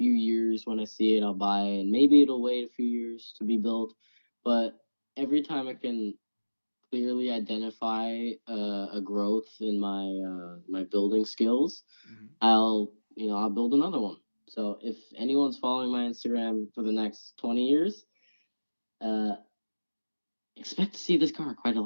years when I see it, I'll buy it, and maybe it'll wait a few years to be built. But every time I can clearly identify a growth in my building skills, Hmm. I'll build another one. So if anyone's following my Instagram for the next 20 years, uh, expect to see this car quite a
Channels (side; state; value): both; inverted; correlation -1.00